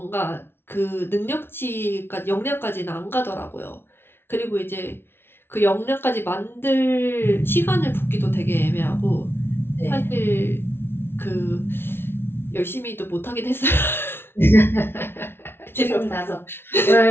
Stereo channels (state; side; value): late; right; 0.11 ms